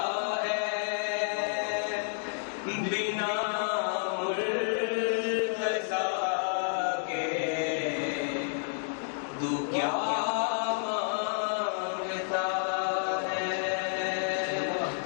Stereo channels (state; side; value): silent; right; digital silence